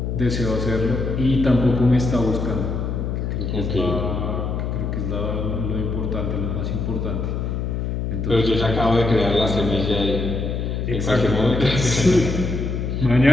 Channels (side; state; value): left; noise; hum, 2 dB below the sound